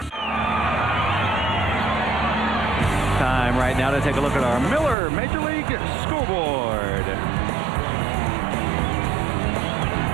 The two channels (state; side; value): drops out; left; at 5.0 s